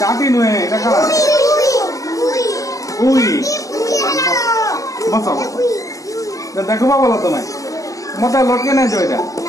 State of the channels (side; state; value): right; late; 0.16 ms